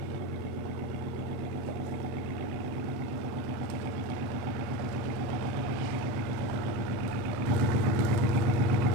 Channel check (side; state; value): left; late; 8.2 ms